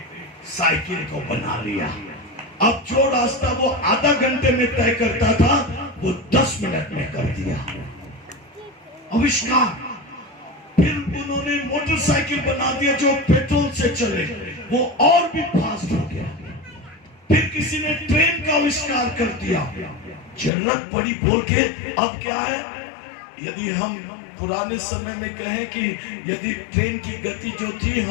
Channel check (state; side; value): drops out; right; at 20.5 s